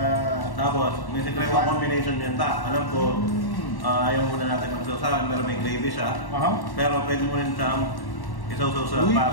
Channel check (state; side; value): late; right; 1.1 ms